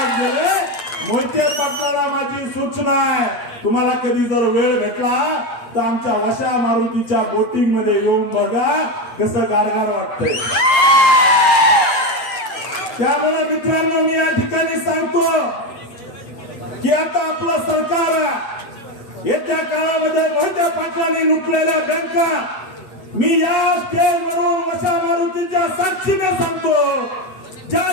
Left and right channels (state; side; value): late; right; 8.5 ms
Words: मोहिते पाटलाला माझी सूचना आहे, तुम्हाला कधी जर वेळ भेटला तर आमच्या वशा मारुतीच्या बोटिंग मध्ये येऊन बघा कसं गारगार वाटतंय. त्यामुळे मित्रांनो मी या ठिकाणी सांगतो की आता आपलं सरकार येत्या काळामध्ये मोहिते पाटलांनी लुटलेल्या बँका मी या स्टेजवरून वशा मारुतीच्या साक्षीने सांगतो, ज्या